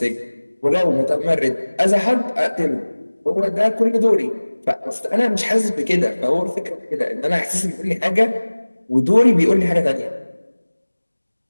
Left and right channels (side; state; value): both; inverted; correlation -1.00